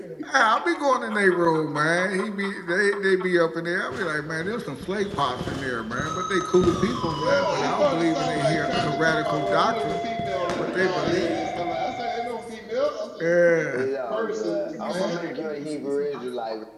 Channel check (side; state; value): both; identical; correlation 1.00